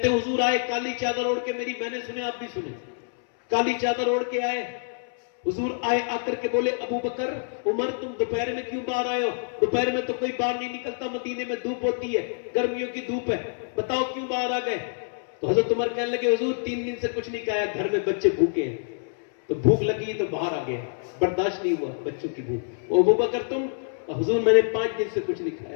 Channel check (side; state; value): right; silent; 61 dB below the other